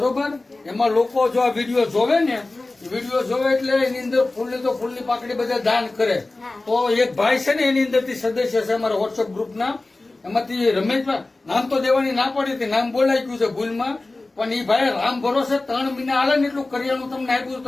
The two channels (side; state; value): right; quieter; 3.1 dB